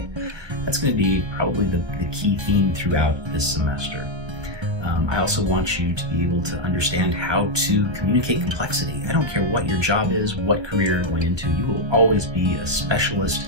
That's going to be probably the key theme throughout this semester. I also want you to be able to understand how to communicate complexity. I don't care what your job is, what career you're going into, you will always be a specialist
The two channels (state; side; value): late; left; 1.4 ms